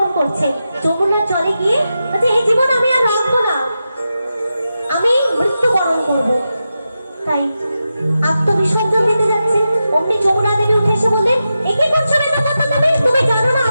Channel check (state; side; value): inverted; both; correlation -0.90